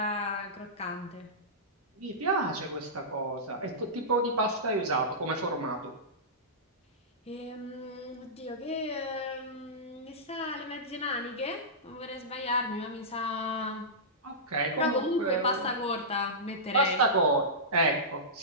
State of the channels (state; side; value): normal; both; correlation -0.16